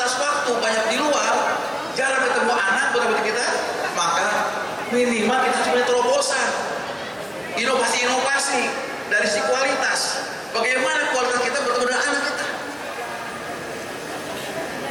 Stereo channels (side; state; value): both; identical; correlation 1.00